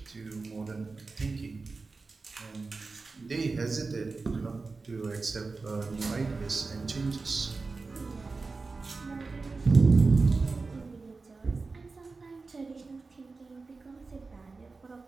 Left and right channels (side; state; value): left; quieter; 4.0 dB